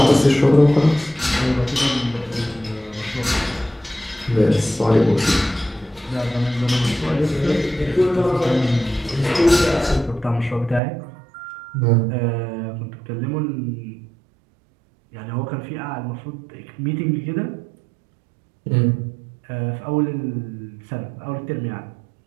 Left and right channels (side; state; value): left; drops out; at 10.8 s